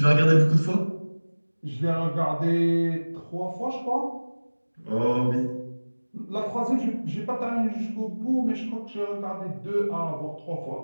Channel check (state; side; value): inverted; both; correlation -1.00